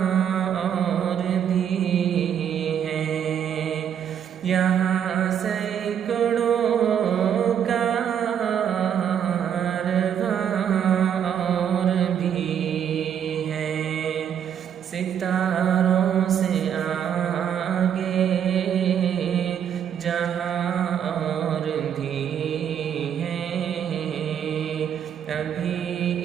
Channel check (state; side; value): quieter; left; 8.8 dB